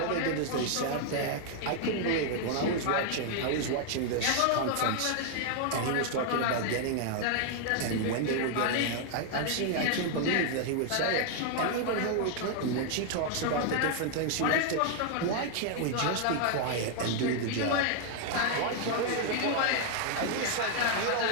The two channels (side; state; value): both; different; correlation 0.00